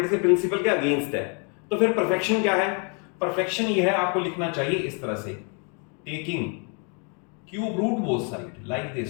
के प्रिंसिपल के अगेंस्ट है। तो फिर परफेक्शन क्या है? परफेक्शन ये है, आपको लिखना चाहिए इस तरह से, taking cube root both side like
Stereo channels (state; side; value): quieter; right; 37.2 dB